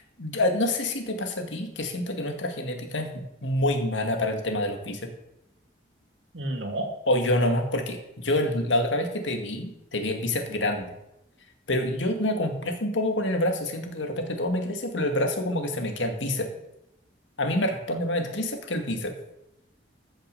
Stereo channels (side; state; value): both; normal; correlation 0.09